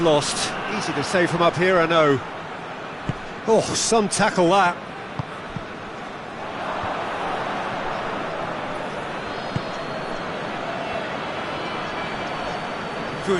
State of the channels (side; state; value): both; identical; correlation 1.00